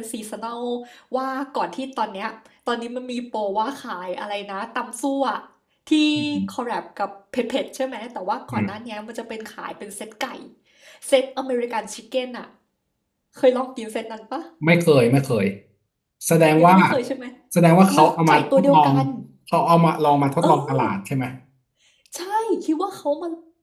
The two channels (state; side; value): identical; both; correlation 1.00